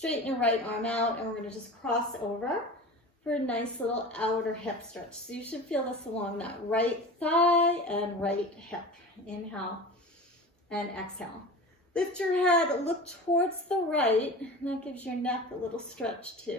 your right arm out, and we're going to just cross over for a nice little outer hip stretch. So you should feel this along that right thigh and right hip. Inhale and exhale. Lift your head, look towards the right, and that gives your neck a little stretch too.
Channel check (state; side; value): normal; both; correlation 0.34